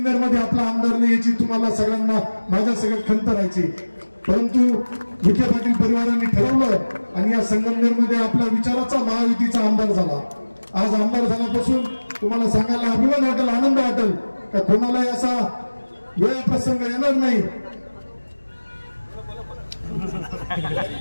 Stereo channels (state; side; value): inverted; both; correlation -1.00